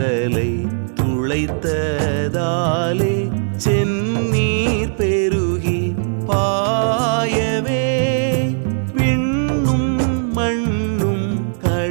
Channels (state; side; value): silent; left; 67 dB below the other